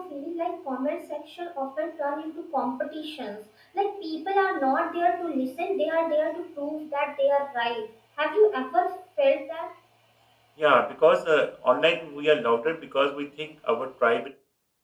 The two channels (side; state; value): both; identical; correlation 1.00